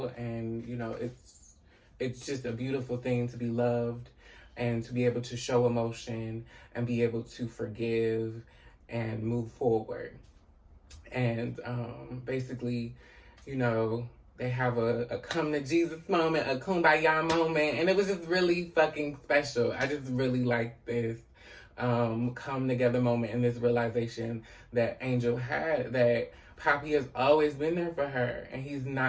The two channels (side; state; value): both; identical; correlation 1.00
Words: and, it's just a beautiful thing to be loved and to be able to show emotion and be able to forgive and move forward. And basically, they have a come to Jesus moment, a kumbaya moment, and it was just really fucking special. I just really like this come together moment, and this realization that Angel had, that Papi has always been there for her, and he's